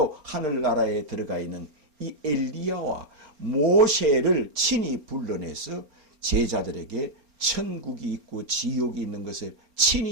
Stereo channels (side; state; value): left; late; 4.3 ms